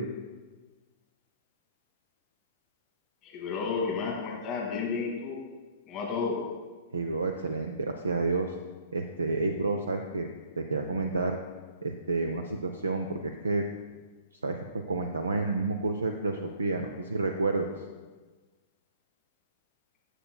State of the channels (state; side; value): inverted; both; correlation -0.58